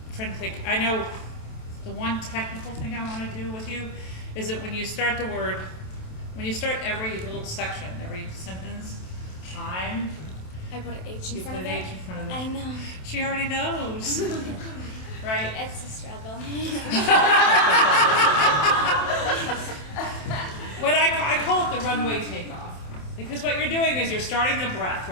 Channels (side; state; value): right; late; 27 ms